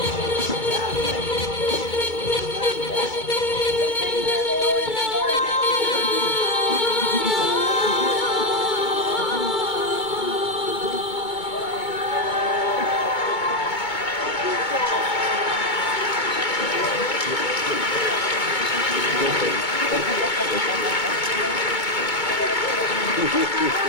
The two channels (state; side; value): late; right; 2.2 ms